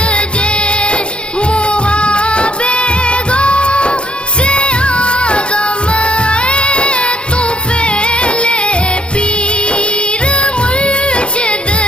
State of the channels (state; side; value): late; right; 0.055 ms